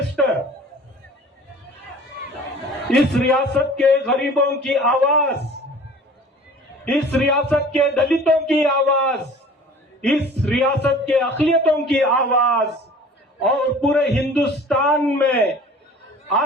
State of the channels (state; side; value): normal; both; correlation 0.45